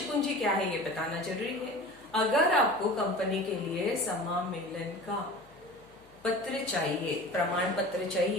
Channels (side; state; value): left; noise; hum, 29 dB below the sound